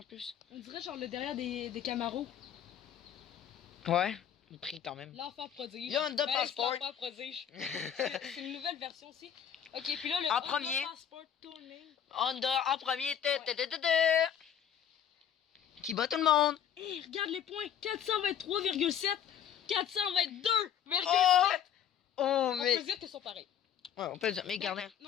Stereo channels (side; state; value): right; quieter; 9.2 dB